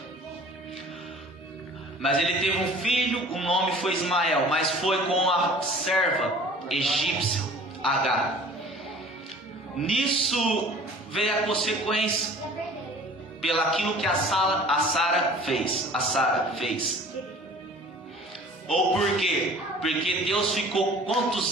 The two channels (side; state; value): both; normal; correlation 0.47